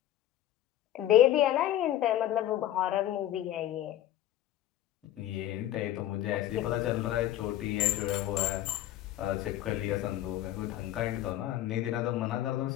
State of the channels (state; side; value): quieter; right; 13.0 dB